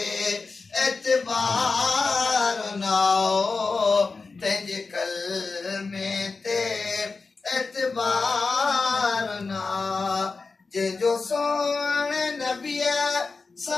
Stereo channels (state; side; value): quieter; right; 4.2 dB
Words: एतबार ना तंहिंजे कलमे ते एतबार ना जंहिंजो सोण नबीअ